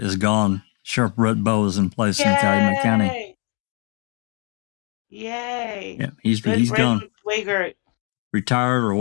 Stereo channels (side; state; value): right; quieter; 36.5 dB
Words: is gone. Sheriff Brett Bowe is in place in Calumet County. Yay! Yeah, he's Good gone. riddance, Wiegert. Retired or